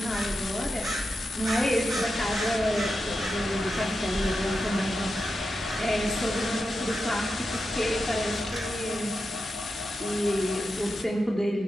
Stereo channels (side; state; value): both; normal; correlation 0.89